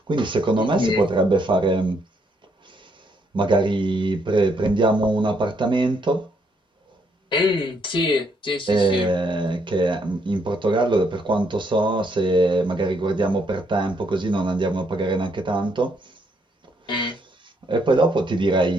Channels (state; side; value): normal; both; correlation 0.73